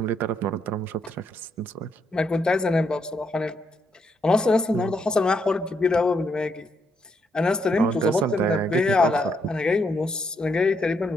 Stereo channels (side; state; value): both; normal; correlation 0.76